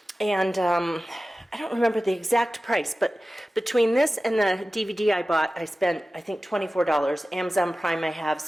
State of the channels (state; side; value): normal; both; correlation 0.95